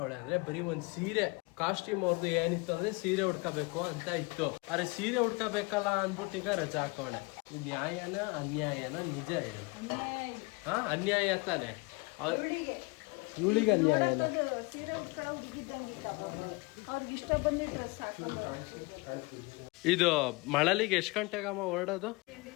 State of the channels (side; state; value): right; quieter; 26.8 dB